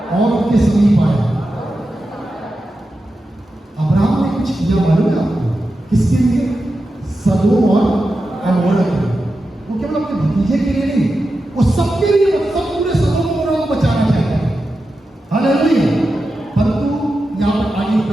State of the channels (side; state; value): both; normal; correlation 0.91